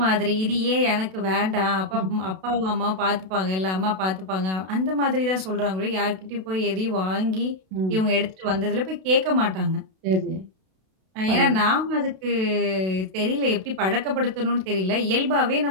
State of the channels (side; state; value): left; late; 32 ms